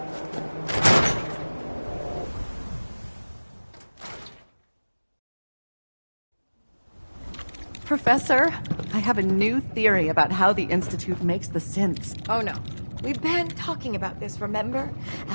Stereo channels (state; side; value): inverted; both; correlation -1.00